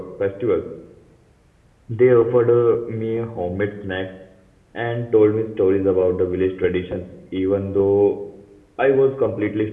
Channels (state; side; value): identical; both; correlation 1.00